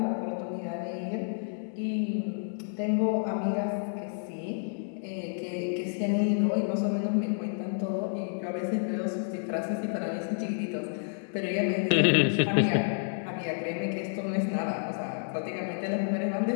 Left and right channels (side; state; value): right; silent; 58 dB below the other